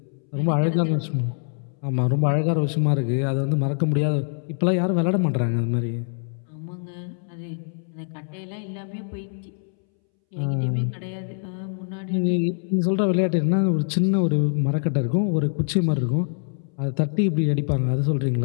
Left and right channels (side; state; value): right; silent; 62 dB below the other